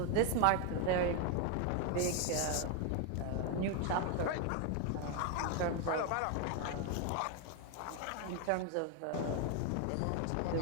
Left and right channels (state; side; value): different; both; correlation 0.00